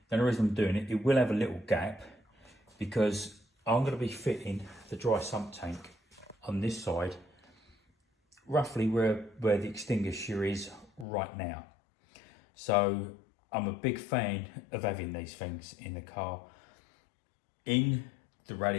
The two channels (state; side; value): drops out; right; at 11.1 s